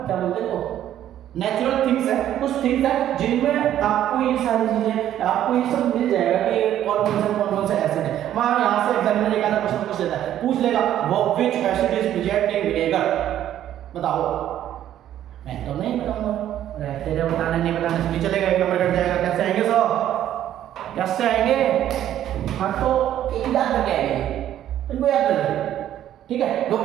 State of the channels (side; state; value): left; quieter; 11.6 dB